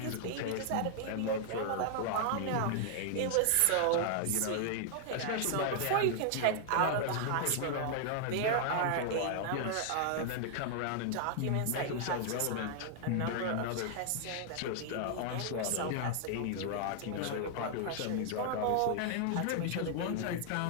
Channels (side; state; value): both; different; correlation 0.00